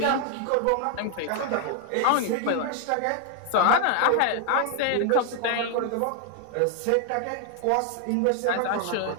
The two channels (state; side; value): different; both; correlation 0.00